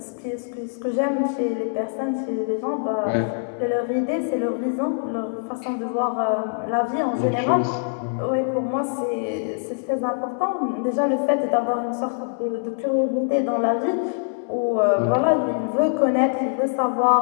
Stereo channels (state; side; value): silent; right; 61 dB below the other